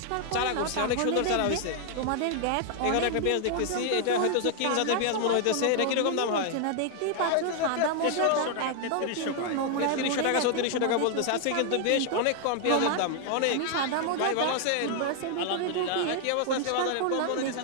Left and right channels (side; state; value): both; different; correlation 0.00